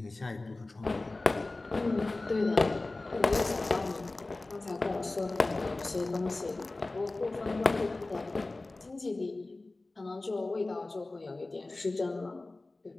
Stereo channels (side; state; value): right; quieter; 3.1 dB